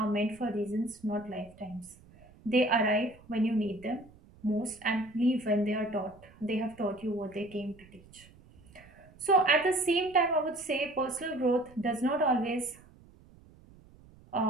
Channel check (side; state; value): right; noise; rumble, 24 dB below the sound